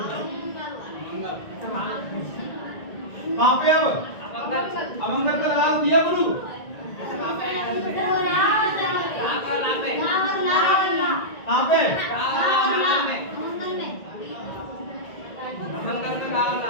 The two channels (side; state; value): right; late; 1.9 ms